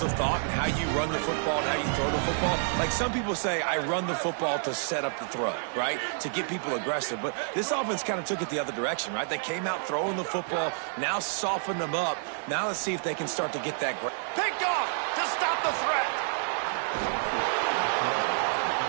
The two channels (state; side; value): silent; left; 59 dB below the other